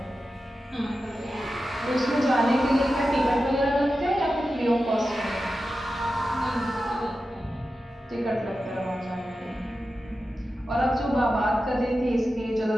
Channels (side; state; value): both; normal; correlation 0.92